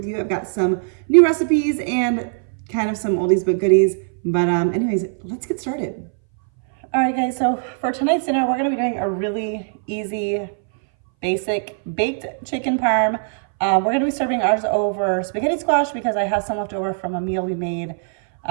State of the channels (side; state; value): left; silent; 61 dB below the other